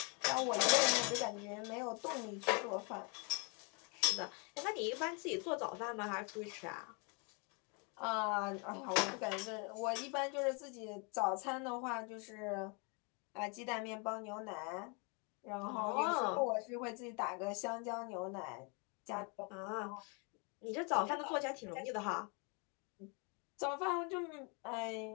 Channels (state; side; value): quieter; right; 34.5 dB